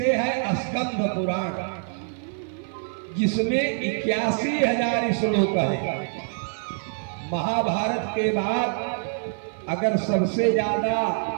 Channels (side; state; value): left; silent; 55 dB below the other